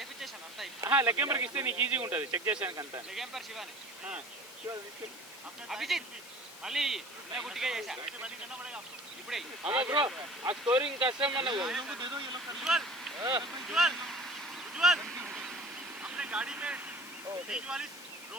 లెగ్ ఎంపైర్ కి ఇస్తే నీకు ఈజీగా ఉంటుంది చెక్ చేసానికి అంతా లెగ్ ఎంపైర్ శివాని అభిజిత్ మళ్ళీ నేను గుట్టిగా చేశా ఇప్పుడే అమ్మా బ్రో ఆ స్కోరింగ్ కష్టం మనకు दे दो ये लोग उज्जवल उज्जवल अपने गाड़ी में बीच वाली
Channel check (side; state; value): both; normal; correlation 0.42